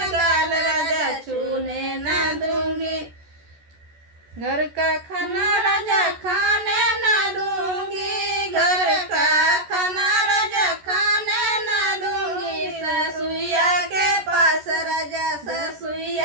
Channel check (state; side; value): late; left; 14 ms